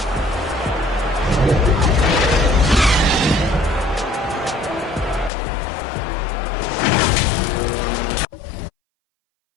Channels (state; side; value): drops out; right; at 5.3 s